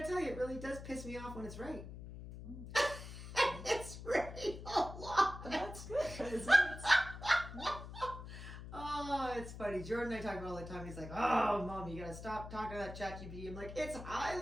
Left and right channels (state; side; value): noise; left; hum, 11 dB below the sound